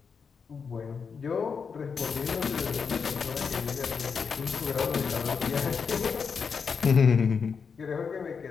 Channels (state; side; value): quieter; right; 5.9 dB